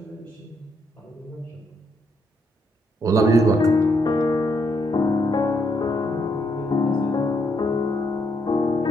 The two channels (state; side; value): normal; both; correlation 0.76